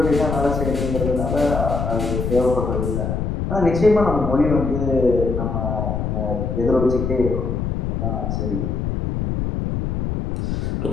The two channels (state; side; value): noise; left; rumble, 2 dB below the sound